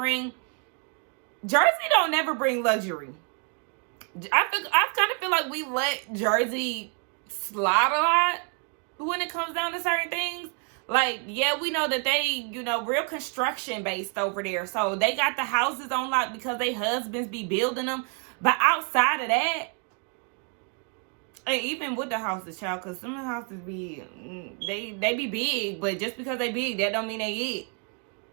Jersey don't never bring luxury. I kind of feel like we let Jersey slide a lot when it comes down to certain things. Like, yeah, we know that they, real construction based over there. So they got the houses on lock because they husbands be building them. But outside of that, And even with the houses, child, because some of the houses be, they be big, but just because they big, that don't mean they it.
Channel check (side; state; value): left; quieter; 38.4 dB